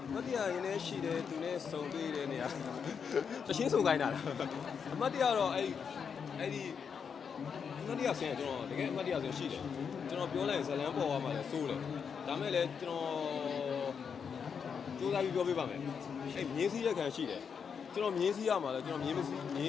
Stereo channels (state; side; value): quieter; right; 6.6 dB